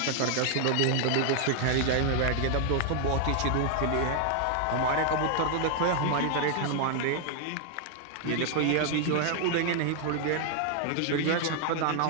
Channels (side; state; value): both; different; correlation 0.00